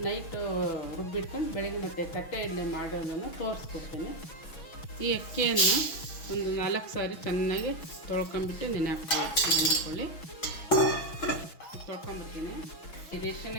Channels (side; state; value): right; late; 6.1 ms